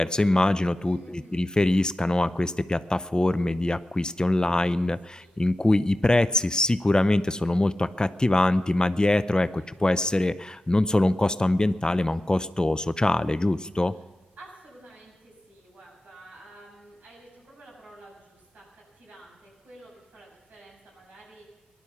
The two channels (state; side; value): normal; both; correlation 0.94